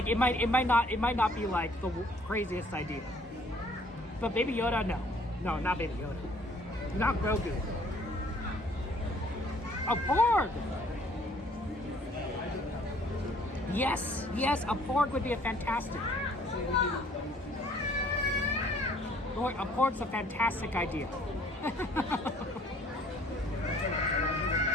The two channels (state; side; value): normal; both; correlation 0.59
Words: it might not be like the craziest idea. But Baby Yoda, no, not Baby Yoda, not Grogu. A Porg. Yes, a Porg would be a fantastic. A Porg's a fantastic idea.